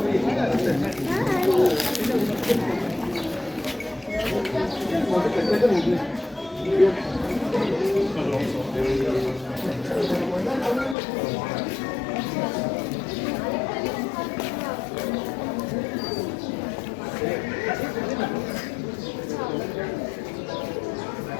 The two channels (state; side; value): drops out; right; at 11.0 s